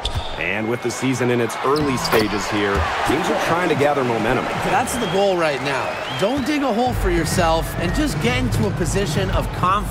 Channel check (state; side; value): identical; both; correlation 1.00